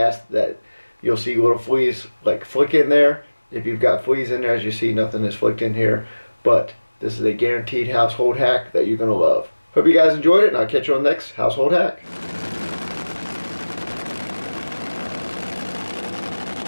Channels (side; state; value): both; inverted; correlation -1.00